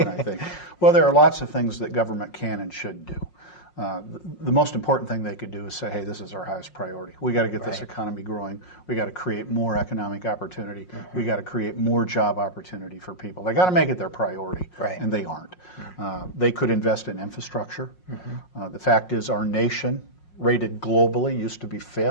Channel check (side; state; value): right; late; 5.5 ms